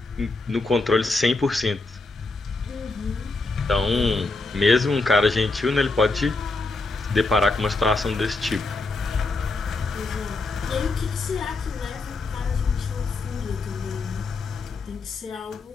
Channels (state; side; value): quieter; right; 3.4 dB